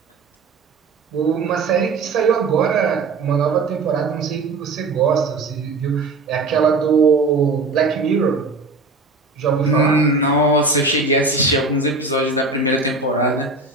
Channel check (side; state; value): left; quieter; 3.6 dB